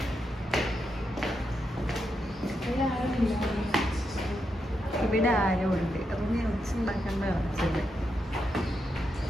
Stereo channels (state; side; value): normal; both; correlation 0.83